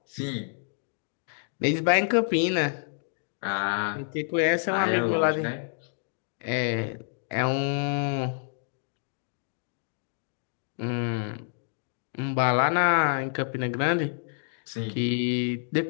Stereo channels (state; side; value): silent; right; digital silence